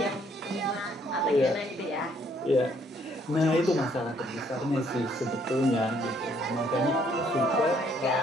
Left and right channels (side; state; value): both; normal; correlation 0.66